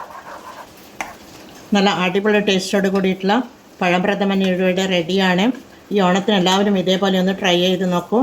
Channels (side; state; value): both; identical; correlation 1.00